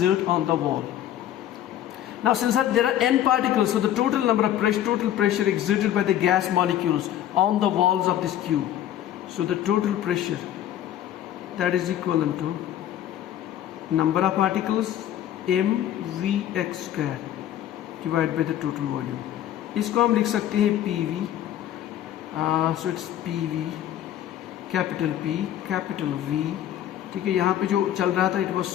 on the wall. Now since there are n particles, so the total number of total pressure exerted by the gas molecules on the walls of this cube. So the total pressure, that is equivalent to number of particles mvx square divided by the total volume. इसको हम लिख सकते हैं PV. So it's PV, capital P, capital V. ठीक है? यहाँ पे जो चल रहा था, it was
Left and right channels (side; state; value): right; quieter; 11.7 dB